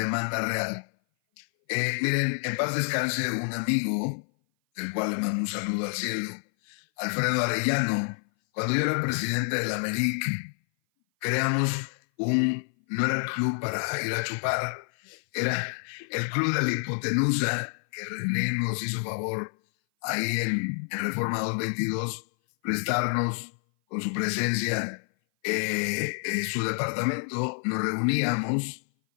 real. Miren, en paz descanse un amigo, del cual le mando un saludo al cielo, Alfredo Arellano. Cuando yo era presidente de la AMERIC, creamos no era el club para ir a chupar, era el club de la hipotenusa, que René nos hizo favor ahí en Reforma 222, prestarnos con su presencia su departamento. Nos reuníamos,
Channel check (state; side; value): silent; right; 56 dB below the other